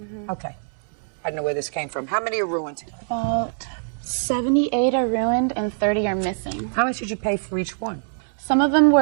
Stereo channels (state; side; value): silent; left; 62 dB below the other